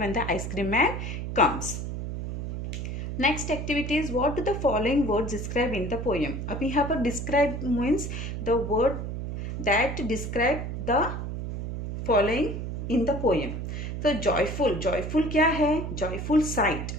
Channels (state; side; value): noise; right; hum, 5 dB below the sound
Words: the ice cream man comes. Next activity is what do the following words describe in the poem. अब यहाँ पर describe means the word that describe the following in the poem. तो joyful क्या है, joyful site